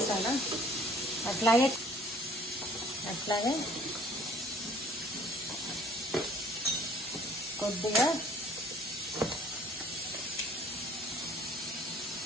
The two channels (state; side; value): normal; both; correlation 0.56